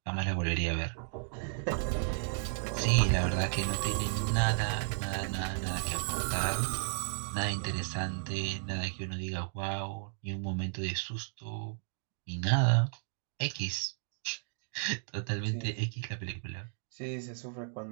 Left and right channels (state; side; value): silent; left; 55 dB below the other